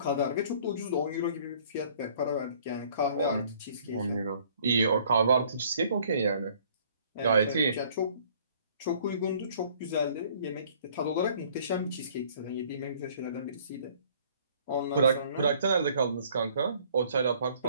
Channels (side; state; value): both; inverted; correlation -0.57